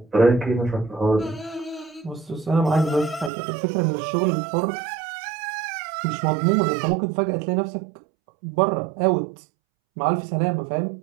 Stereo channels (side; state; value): left; drops out; at 3.3 s